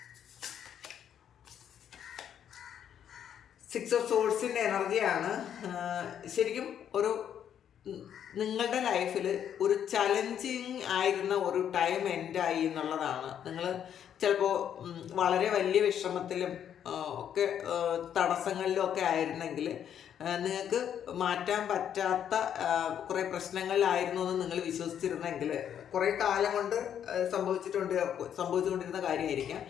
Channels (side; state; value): right; quieter; 9.3 dB